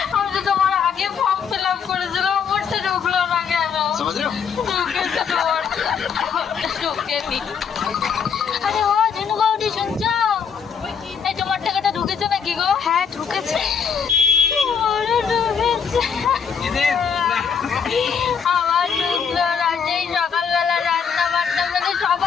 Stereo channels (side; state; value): right; quieter; 6.8 dB